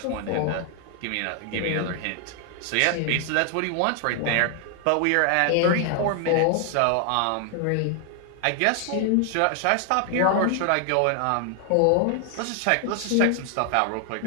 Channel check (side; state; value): both; different; correlation 0.00